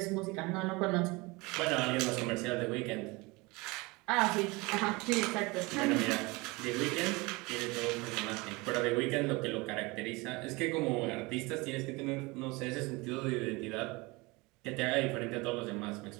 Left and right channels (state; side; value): quieter; left; 24.6 dB